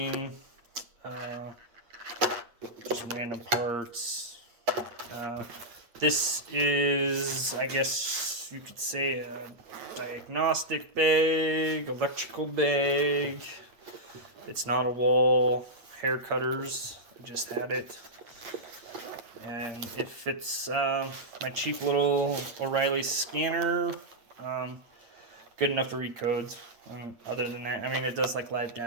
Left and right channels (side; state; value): left; late; 8.6 ms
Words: just random parts. This is, I guess you could say, a diagnostic bag, electrical bag. It's not a wall. Hair cutters. I just had it. And if it's my cheap little O'Reilly scanner, good enough to read codes. Other than that, it does like live